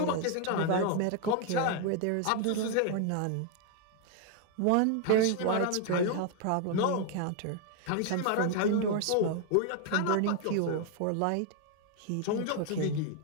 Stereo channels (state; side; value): different; both; correlation 0.00